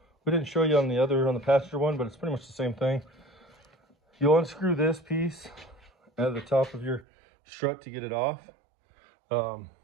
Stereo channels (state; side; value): drops out; left; at 7.1 s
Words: we didn't show you on the passenger one, but it's pretty much the same thing. You'll unscrew this piece out of the top of your strut to get it off.